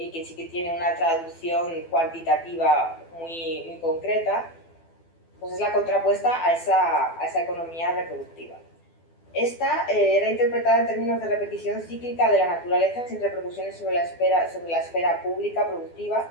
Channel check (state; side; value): late; right; 12 ms